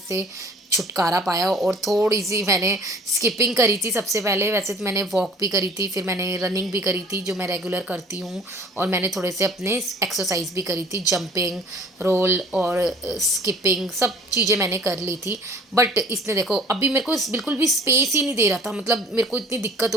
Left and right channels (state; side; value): normal; both; correlation 0.50